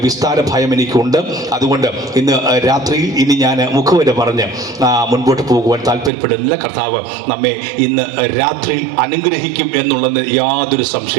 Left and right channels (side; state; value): left; drops out; at 6.1 s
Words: വിസ്താര ഭയം എനിക്കുണ്ട്. അതുകൊണ്ട് ഇന്ന് രാത്രിയിൽ ഇനി ഞാൻ മുഖവര പറഞ്ഞ് മുൻപോട്ട് പോകുവാൻ താല്പര്യപ്പെടുന്നില്ല. കർത്താവ് നമ്മെ ഇന്ന് രാത്രിയിൽ അനുഗ്രഹിക്കും എന്നുള്ളത് യാതൊരു